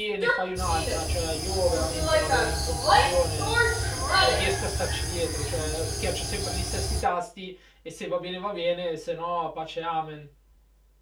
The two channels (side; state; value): both; identical; correlation 1.00